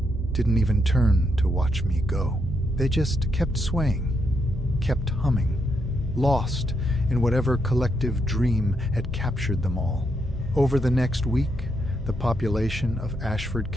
didn't even turn to watch me go. They just kept swaying, kept humming, lost in whatever collective dream had captured them all. Over the next week, the population of Ashford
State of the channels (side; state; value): both; normal; correlation 0.79